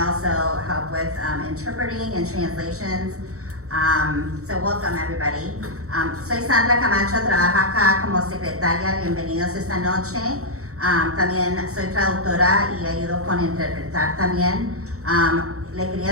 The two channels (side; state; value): left; late; 0.64 ms